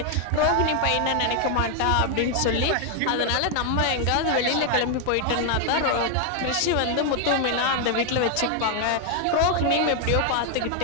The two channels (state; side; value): different; both; correlation 0.00